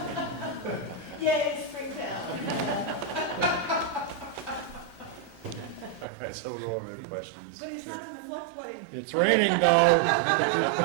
Yay, Springtown. right, so we'll go over the questions. But it's not in the floodplain. It's raining though. You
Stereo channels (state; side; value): drops out; left; at 6.1 s